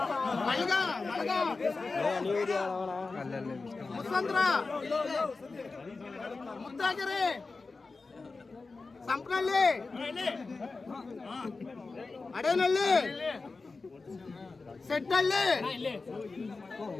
ಮುಸಂದ್ರ ಮುತ್ತಾಗೆರೆ ಸಂಪನಹಳ್ಳಿ ಅಡೇನಹಳ್ಳಿ ಸೆಟ್ಟಹಳ್ಳಿ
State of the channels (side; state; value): right; quieter; 3.9 dB